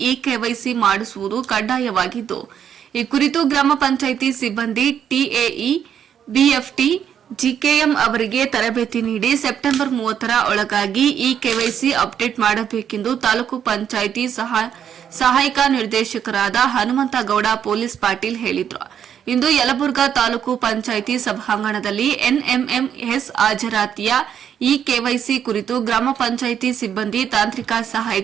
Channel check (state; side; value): quieter; left; 8.8 dB